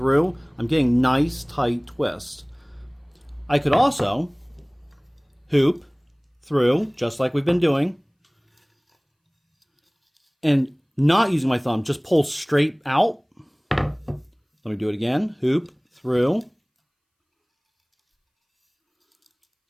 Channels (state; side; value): identical; both; correlation 1.00